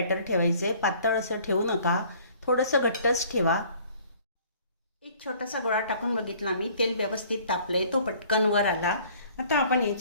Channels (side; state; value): both; inverted; correlation -0.54